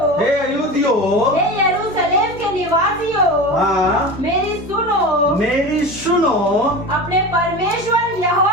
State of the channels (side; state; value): both; normal; correlation 0.29